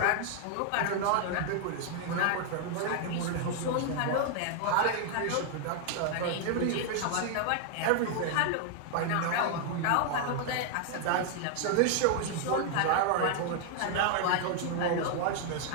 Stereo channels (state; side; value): different; both; correlation 0.00